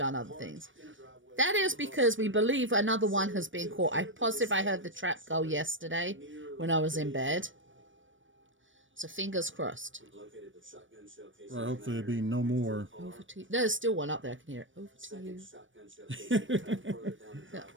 other things. That is because we believe another one has been caught. I'm positive I heard the trap go yesterday when I was in bed. So fingers crossed. Well, hopefully there'll be no more. Over to you. There's still one up there. I can hear it. Over to you. Look,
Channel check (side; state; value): left; late; 0.56 ms